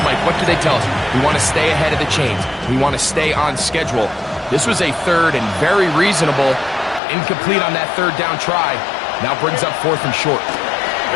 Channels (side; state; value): right; drops out; at 7.0 s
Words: Mike, what do they tell us? We want to stay ahead of the chains. We want to stay on schedule. This was a third and very reasonable. Incomplete on that third down try. Now brings up fourth and short.